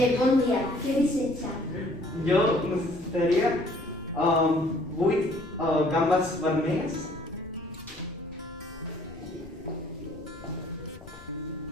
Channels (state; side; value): noise; left; rumble, 19 dB below the sound